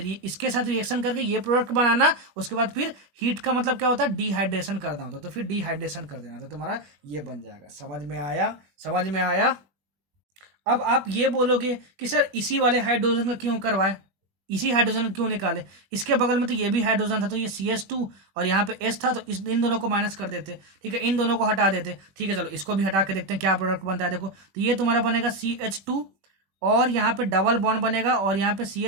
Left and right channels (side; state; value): left; late; 21 ms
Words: इसके साथ रिएक्शन करके ये प्रोडक्ट बनाना, उसके बाद फिर हीट का मतलब क्या होता है, डिहाइड्रेशन करना होता है, तो फिर डिहाइड्रेशन कर देना, तो तुम्हारा ये बन जाएगा। समझ में आया। अब आप ये बोलोगे कि सर इसी वाले हाइड्रोजन का क्यों करवाए, इसी हाइड्रोजन क्यों निकाले, इसके बगल में तो ये भी हाइड्रोजन था, तो ये CH2 और यहाँ पे S था, तो इन दोनों को माइनस कर देते। ठीक है, इन दोनों को हटा देते। ठीक है, चलो इसको भी हटा के देखते हैं क्या प्रोडक्ट बनता है। देखो तो ये तुम्हारा बनेगा CH2 और यहाँ पे डबल बॉन्ड बनेगा और यहाँ पे